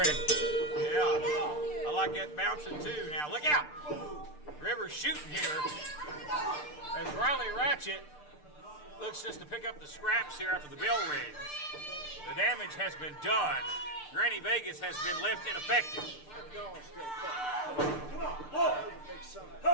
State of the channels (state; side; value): late; right; 6.7 ms